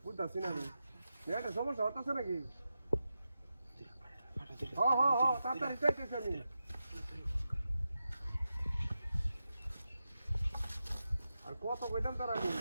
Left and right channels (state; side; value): inverted; both; correlation -0.90